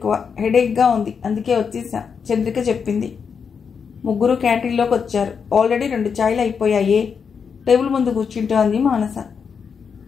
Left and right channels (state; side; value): quieter; right; 6.3 dB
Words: హెడేక్గా ఉంది, అందుకే వచ్చేసా చంద్రిక చెప్పింది. ముగ్గురు క్యాంటీన్లోకి వచ్చారు. ఆల్రెడీ 2 చాయ్లు అయిపోయాయే. టేబుల్ ముందు కూర్చుంటూ అంది మానస.